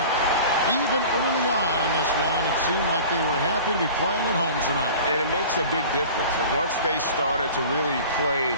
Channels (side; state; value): both; inverted; correlation -0.40